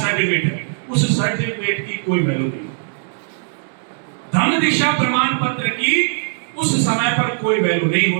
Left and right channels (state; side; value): silent; left; digital silence